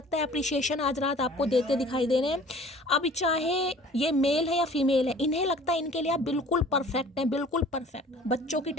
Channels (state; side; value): normal; both; correlation 0.49